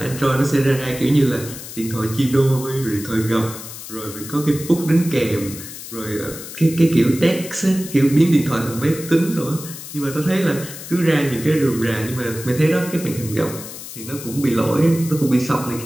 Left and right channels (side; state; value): left; noise; hiss, 12 dB below the sound